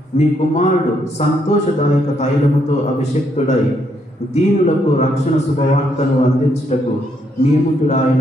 నీ కుమారుడు సంతోషదాయక తైలముతో అభిషక్తుడై దీనులకు రక్షణ శుభవార్తను అందించుటకు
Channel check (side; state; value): both; normal; correlation 0.74